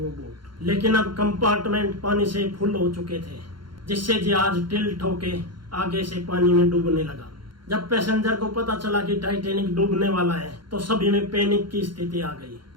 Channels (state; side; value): late; left; 0.72 ms